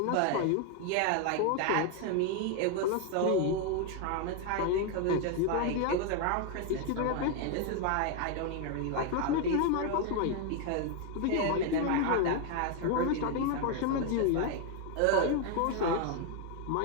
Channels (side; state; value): both; different; correlation 0.01